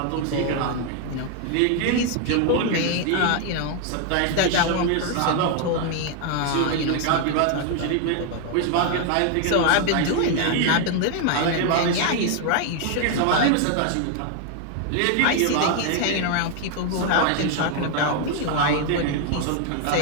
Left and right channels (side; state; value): both; different; correlation 0.00